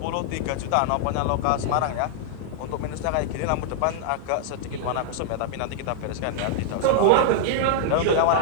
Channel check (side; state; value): both; different; correlation -0.01